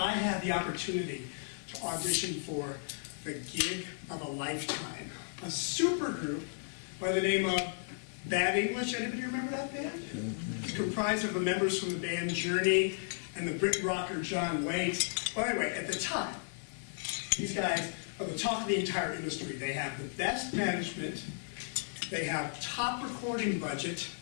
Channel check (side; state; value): right; silent; digital silence